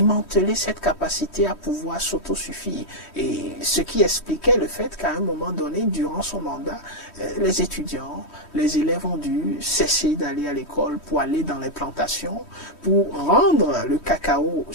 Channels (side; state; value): right; late; 3.1 ms